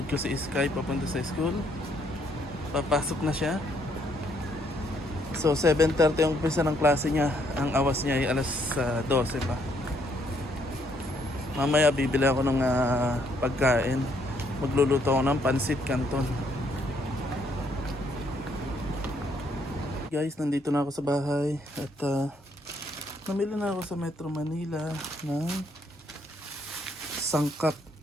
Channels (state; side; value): normal; both; correlation 0.70